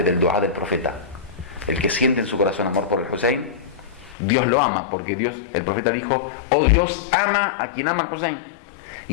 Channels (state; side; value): drops out; right; at 4.2 s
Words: del dua del profeta. El que siente en su corazón amor por el Hussein, Dios lo ama, porque Dios, el profeta dijo, oh Dios, ama a quien ama al Hussein.